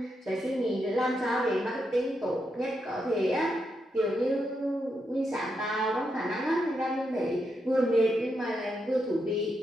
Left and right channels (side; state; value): both; normal; correlation 0.83